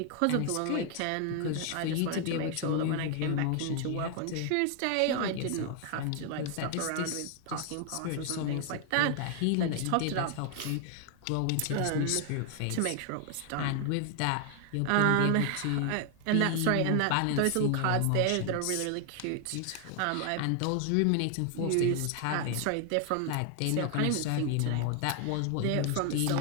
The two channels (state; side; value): different; both; correlation 0.00